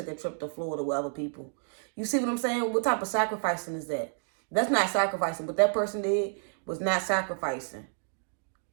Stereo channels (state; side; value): silent; left; digital silence